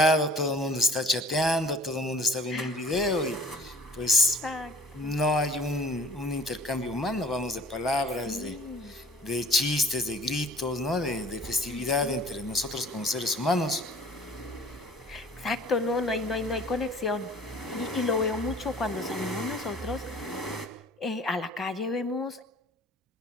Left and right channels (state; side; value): normal; both; correlation 0.50